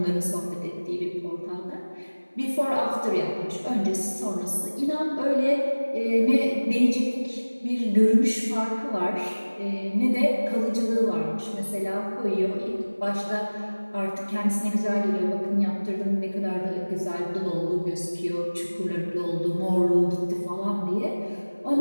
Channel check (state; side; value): inverted; both; correlation -1.00